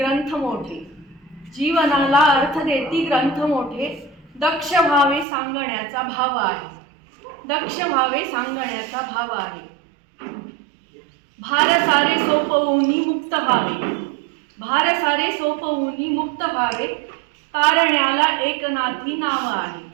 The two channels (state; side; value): drops out; left; at 5.2 s